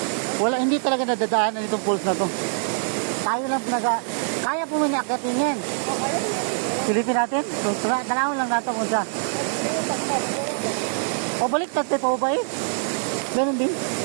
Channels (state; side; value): silent; left; digital silence